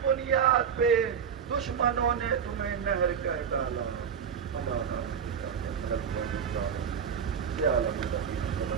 بنیاد پہ دشمنوں نے تمہیں نہر کر ڈالا؟ اللہ عالم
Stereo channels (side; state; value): left; quieter; 7.5 dB